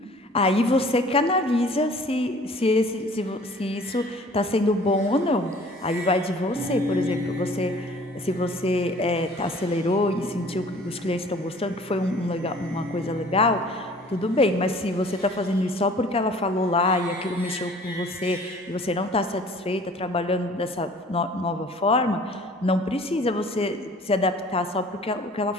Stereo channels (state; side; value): normal; both; correlation 0.50